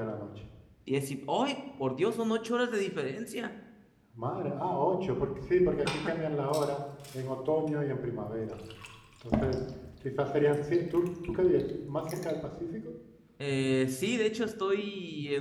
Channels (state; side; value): identical; both; correlation 1.00